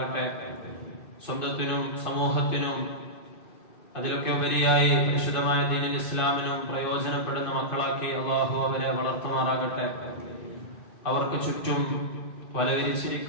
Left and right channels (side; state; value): right; late; 2.5 ms